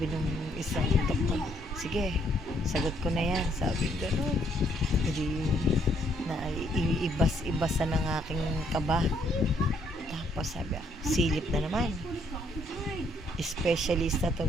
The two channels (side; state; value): both; normal; correlation 0.69